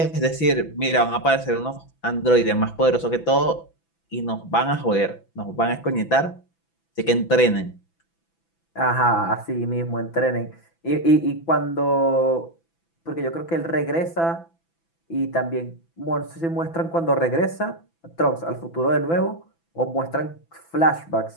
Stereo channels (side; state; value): right; late; 6.0 ms